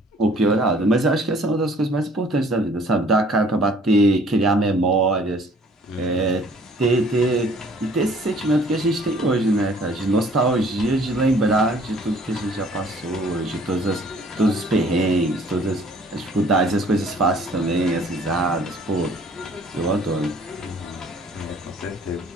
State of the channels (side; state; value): both; normal; correlation 0.56